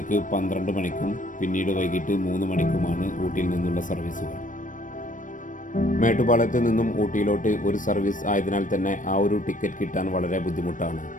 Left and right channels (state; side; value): late; right; 0.38 ms